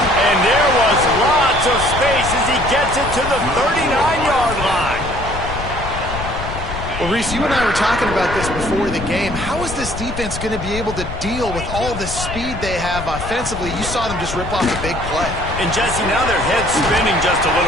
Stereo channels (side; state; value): left; noise; rumble, 8 dB below the sound